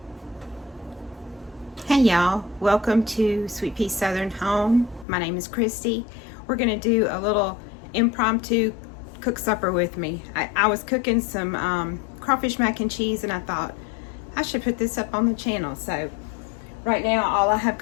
y'all, welcome to Sweet Pea Southern Home. My name is Christy. We're gonna do a little impromptu cook supper with me. I was cooking some crawfish mac and cheese, and I thought I should put this up on the channel. So right now all I have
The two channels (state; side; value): drops out; right; at 5.1 s